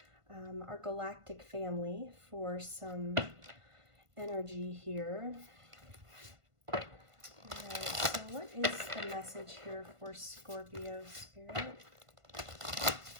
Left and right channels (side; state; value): left; late; 1.5 ms